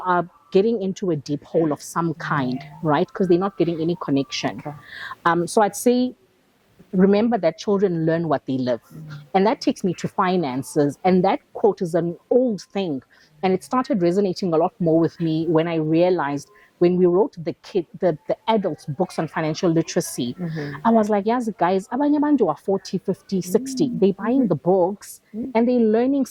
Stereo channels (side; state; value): both; identical; correlation 1.00